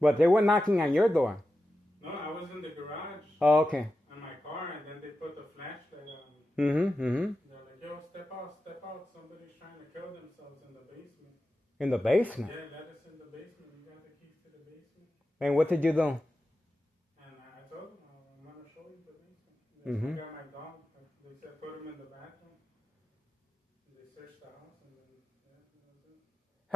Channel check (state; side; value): normal; both; correlation 0.91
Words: But they were knocking on your door. No, I was in the garage. Oh, okay. In my car, and then they put the flashlight on me. They're like, yo, step out. Somebody's trying to kill themselves in the basement. In the basement? Yeah, let us in the basement. You got the keys to the basement. And what did you do? And I told them, I'm going to show you the basement. I got my dog. They said put him in the bathroom. They searched the house, and then, yeah, that was it.